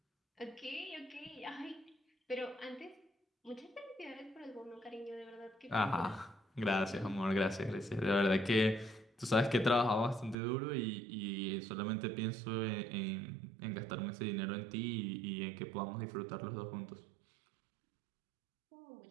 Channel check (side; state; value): left; drops out; at 10.4 s